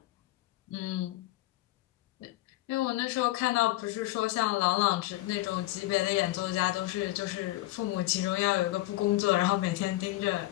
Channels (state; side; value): quieter; right; 17.4 dB